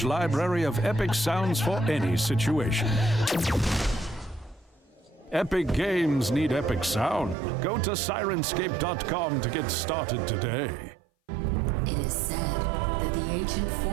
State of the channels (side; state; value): left; drops out; at 7.4 s